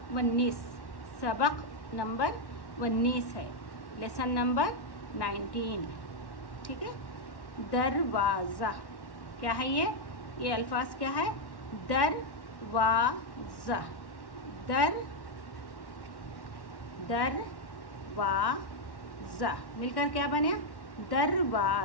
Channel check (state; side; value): late; right; 1.1 ms